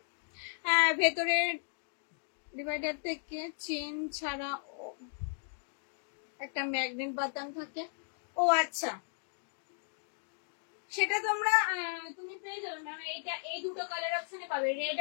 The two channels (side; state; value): right; silent; digital silence